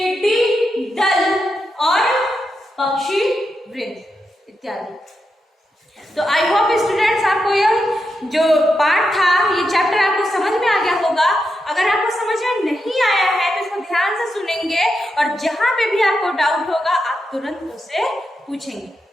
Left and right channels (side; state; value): both; normal; correlation 0.86